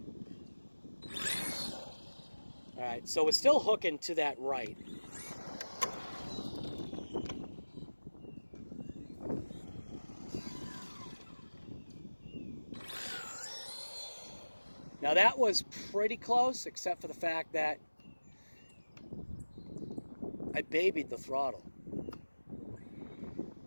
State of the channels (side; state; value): both; inverted; correlation -1.00